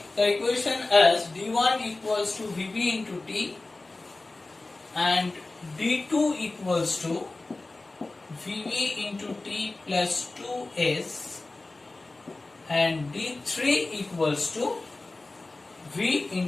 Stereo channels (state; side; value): quieter; right; 3.2 dB